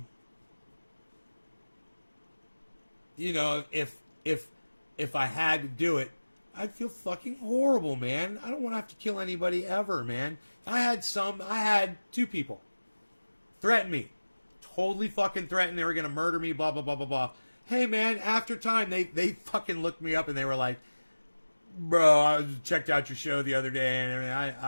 you know, if I had to do it, I'd feel fucking horrible, man. I don't want to have to kill anybody ever, man. I had 2 people threaten me. Totally fucking threatened they were going to murder me, blah, blah, blah, blah, blah. Hey, man, after time, they fucking looked me up and they were like, bro, I checked out your show the other day and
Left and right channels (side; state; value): both; inverted; correlation -1.00